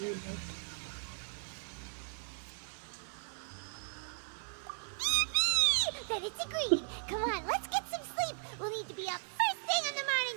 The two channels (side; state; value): left; silent; 53 dB below the other